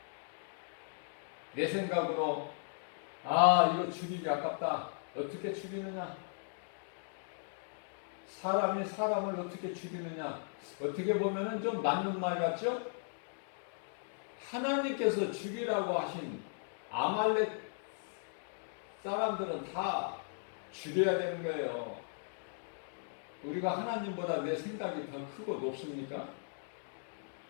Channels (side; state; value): right; silent; digital silence